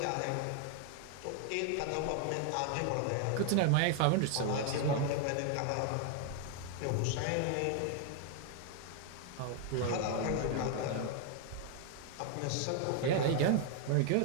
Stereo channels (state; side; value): different; both; correlation 0.00